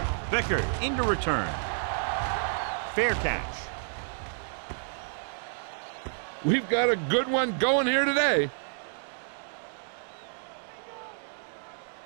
Vickers into return. Fair catch. We've got a good one going here today.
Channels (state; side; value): silent; left; digital silence